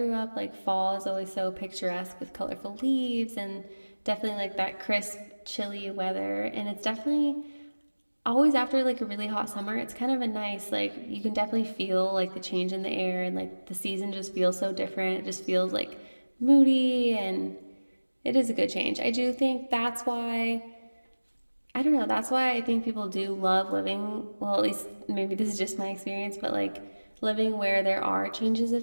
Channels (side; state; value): both; inverted; correlation -1.00